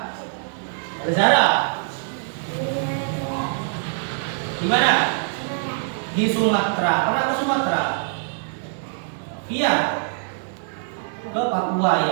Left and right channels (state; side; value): silent; left; digital silence